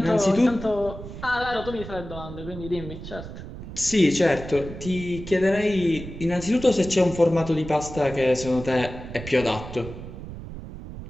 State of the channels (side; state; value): right; noise; rumble, 11 dB below the sound